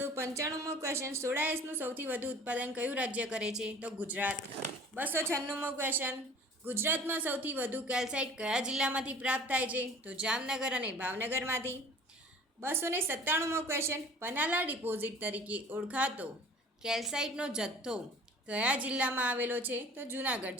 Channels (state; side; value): normal; both; correlation 0.47